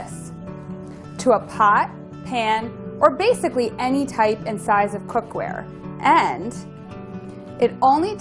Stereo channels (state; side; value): identical; both; correlation 1.00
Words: to a pot, pan, or basically any type and size of cookware. And it only